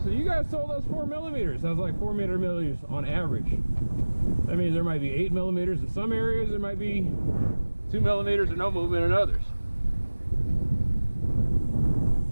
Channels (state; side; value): inverted; both; correlation -1.00